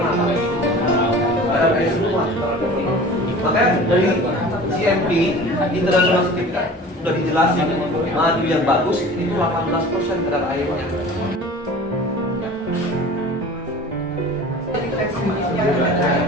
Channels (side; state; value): both; normal; correlation 0.41